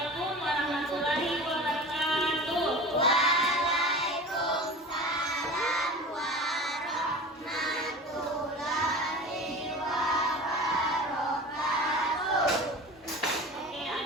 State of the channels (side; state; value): both; normal; correlation 0.35